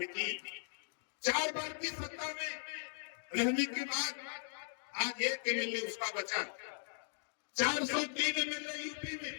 थी, 4 बार की सत्ता में रहने के बाद आज एक एमएलए उसका बचा, 403 एमएलए यूपी में,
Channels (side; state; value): right; silent; digital silence